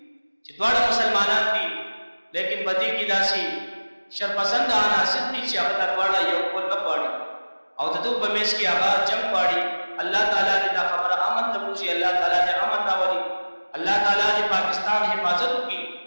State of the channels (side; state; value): both; inverted; correlation -1.00